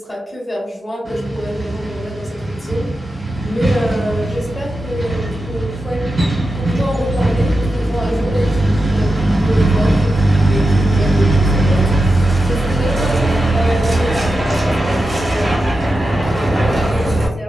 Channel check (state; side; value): normal; both; correlation 0.90